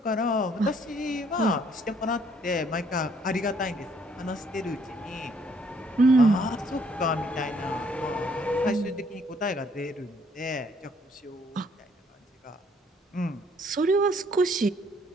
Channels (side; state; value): both; normal; correlation 0.65